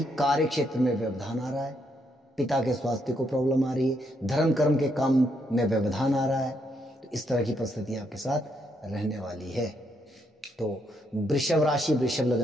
कार्य क्षेत्र में व्यवधान आ रहा है, पिता के स्वास्थ्य को प्रॉब्लम आ रही है, धर्म कर्म के काम में व्यवधान आ रहा है। तो इस तरह की परिस्थितियां आपके साथ रहने वाली है। तो वृषभ राशि, वृषभ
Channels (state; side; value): normal; both; correlation 0.76